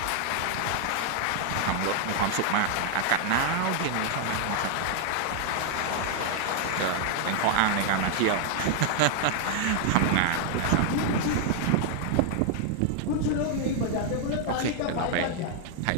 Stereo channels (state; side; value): different; both; correlation 0.00